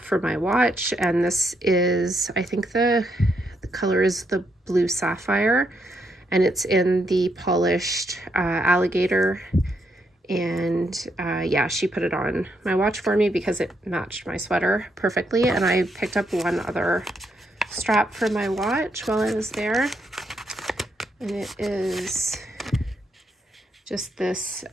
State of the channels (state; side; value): normal; both; correlation 0.78